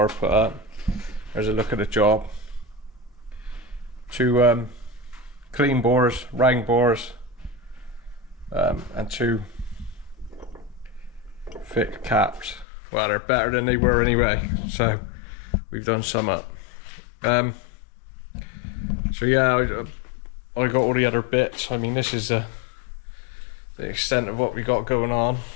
put up. There's a look at the job. 2 clean bores, round bores. And 2 thick caps. Well, they're better than they were anyway, so we've done some up. So yeah, I got all the other bits. I mean, this is the extent of what we got going on.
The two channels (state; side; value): drops out; right; at 12.7 s